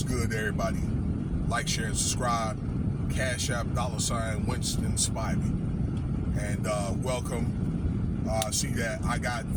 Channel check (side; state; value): both; identical; correlation 1.00